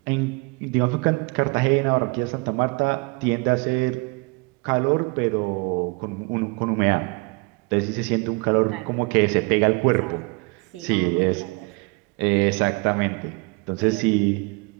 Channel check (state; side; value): quieter; left; 28.6 dB